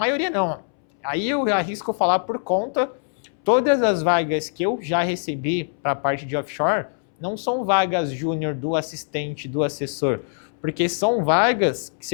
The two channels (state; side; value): silent; right; 64 dB below the other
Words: não. Aí eu arrisco falar por conta... Todas as vagas que eu já recebi para a parte de offshore não são vagas júnior do assistente, do assessor, porque são vagas que